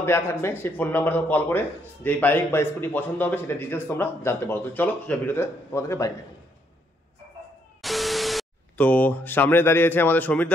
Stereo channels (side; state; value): both; normal; correlation 0.72